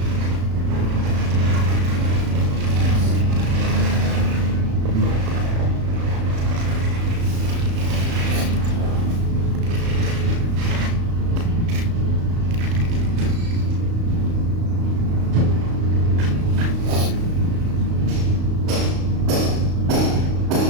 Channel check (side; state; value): left; late; 35 ms